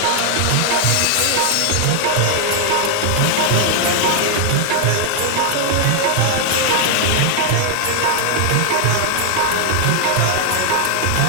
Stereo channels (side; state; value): both; different; correlation 0.00